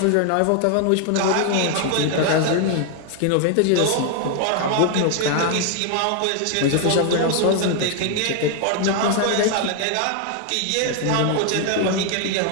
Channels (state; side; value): different; both; correlation 0.00